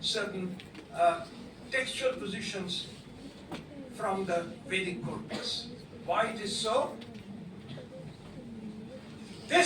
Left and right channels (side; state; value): both; identical; correlation 1.00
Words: certain textual positions from the Vedic corpus. Why it is so?